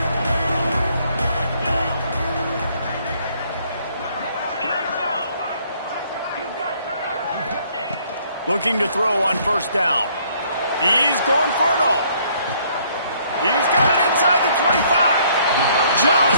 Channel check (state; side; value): inverted; both; correlation -0.64